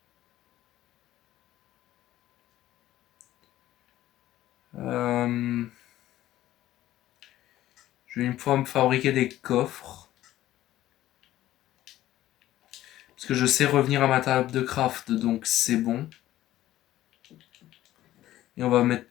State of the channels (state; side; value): quieter; right; 14.3 dB